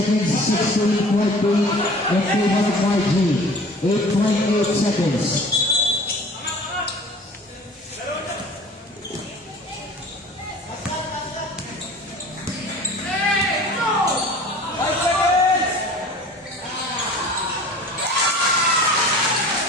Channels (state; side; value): normal; both; correlation 0.44